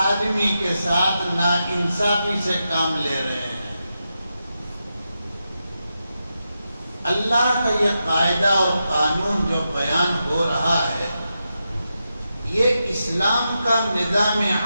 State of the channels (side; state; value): both; inverted; correlation -0.88